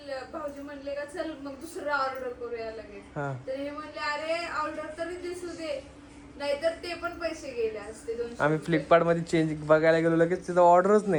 भाऊजी म्हणले का चल मग दुसरं ऑर्डर करूया लगेच. हा. तर हे म्हणले अरे ऑर्डर तरी दिसू दे, नाहीतर ते पण पैसे गेले असते 200 आम्ही रुपये. फ्लिपकार्ट मध्ये चेंज बघायला गेलो, लगेच तिथं ऑर्डरच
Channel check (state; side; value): identical; both; correlation 1.00